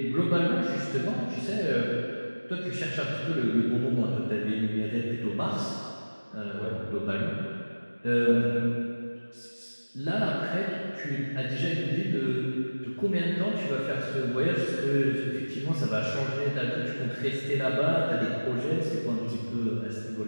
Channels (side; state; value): both; inverted; correlation -1.00